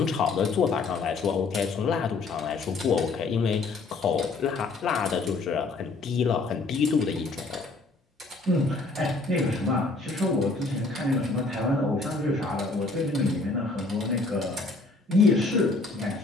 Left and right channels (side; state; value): right; quieter; 3.6 dB